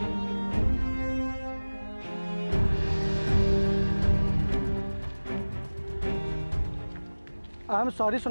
I am sorry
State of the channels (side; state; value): both; inverted; correlation -1.00